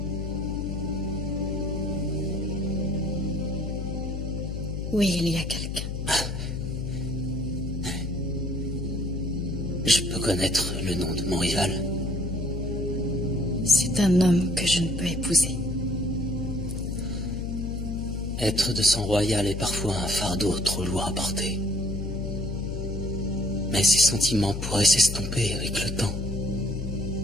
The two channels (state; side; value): noise; left; hum, 4 dB below the sound